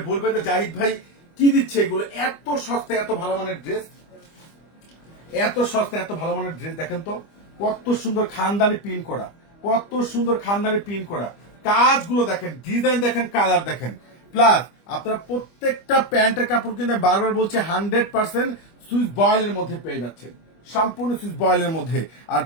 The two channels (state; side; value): late; right; 25 ms